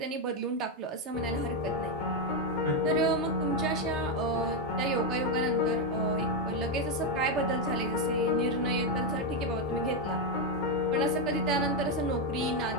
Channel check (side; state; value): both; normal; correlation 0.05